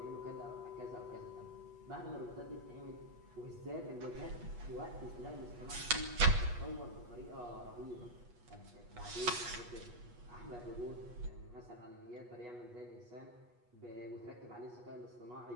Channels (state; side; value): late; left; 8.3 ms